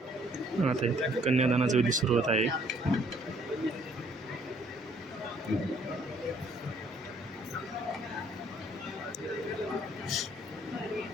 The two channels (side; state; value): both; normal; correlation 0.63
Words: आता इथे कन्यादानाचा विधी सुरू होत आहे.